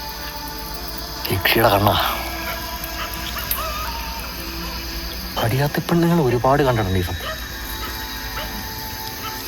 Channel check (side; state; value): both; identical; correlation 1.00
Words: യക്ഷിയുടെ കണ്ണാ. അടിയാത്ത പെണ്ണുങ്ങൾ ഒരുപാട് കണ്ടിട്ടുണ്ട് ഈ സത്യം.